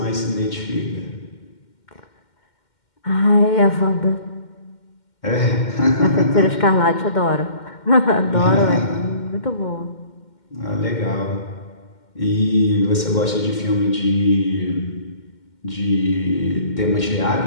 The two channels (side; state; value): right; late; 2.1 ms